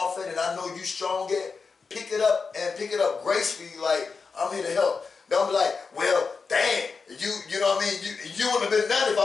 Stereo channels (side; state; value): right; quieter; 4.9 dB